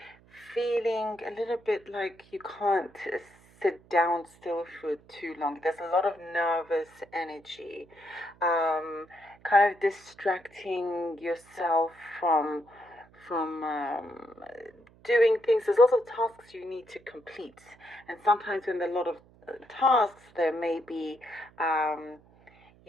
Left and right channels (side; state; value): right; noise; hum, 27 dB below the sound